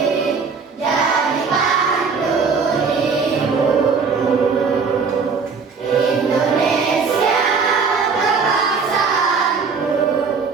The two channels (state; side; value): quieter; left; 5.2 dB